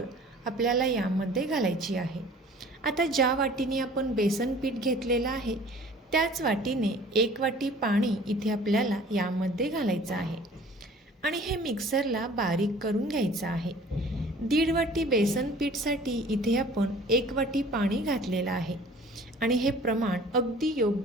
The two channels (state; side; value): normal; both; correlation 0.49